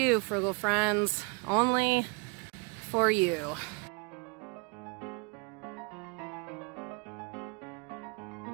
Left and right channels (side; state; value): left; quieter; 32.5 dB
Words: Frugal Friends. Only for you.